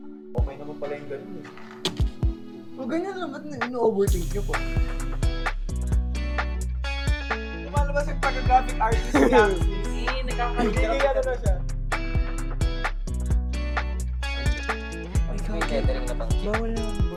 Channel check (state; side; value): identical; both; correlation 1.00